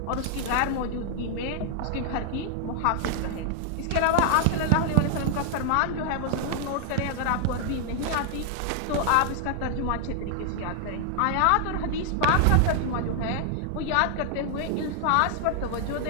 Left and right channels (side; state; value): both; different; correlation 0.00